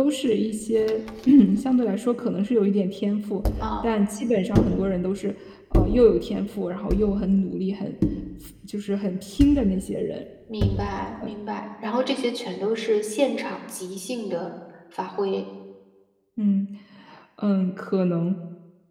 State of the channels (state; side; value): identical; both; correlation 1.00